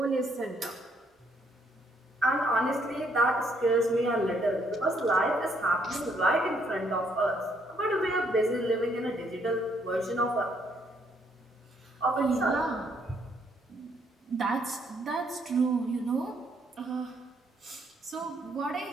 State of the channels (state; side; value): normal; both; correlation 0.70